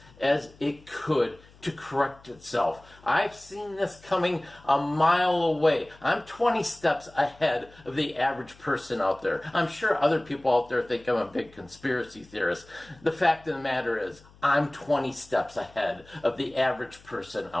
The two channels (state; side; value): noise; left; hum, 25 dB below the sound